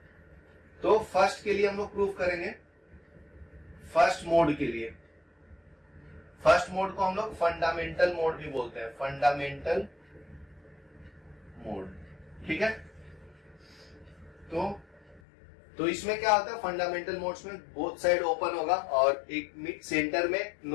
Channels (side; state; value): right; drops out; at 15.2 s